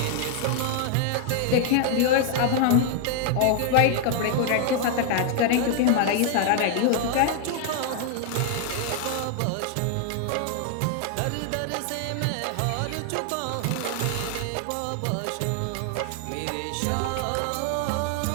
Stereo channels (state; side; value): different; both; correlation 0.00